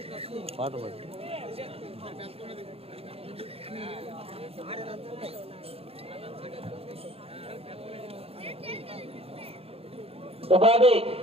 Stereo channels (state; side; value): late; left; 0.28 ms